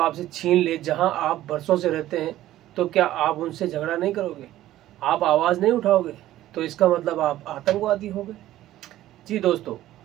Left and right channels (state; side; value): quieter; left; 14.3 dB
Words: छीन ले जहां आप बरसों से रहते हैं, तो क्या आप उनसे झगड़ा नहीं करोगे? आप आवाज नहीं उठाओगे? तो इसका मतलब आप आतंकवादी हो गए। जी दोस्तों,